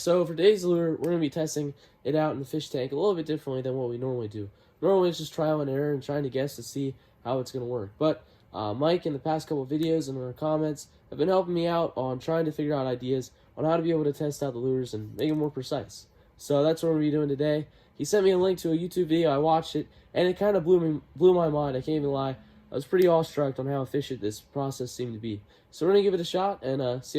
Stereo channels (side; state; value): both; identical; correlation 1.00